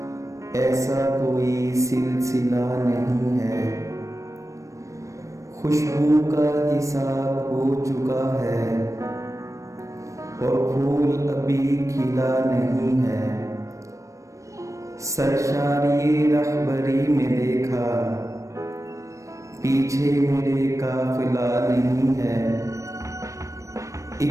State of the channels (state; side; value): late; left; 0.15 ms